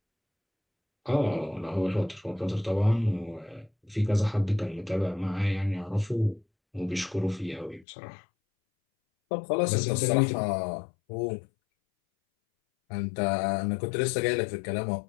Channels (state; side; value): drops out; right; at 7.9 s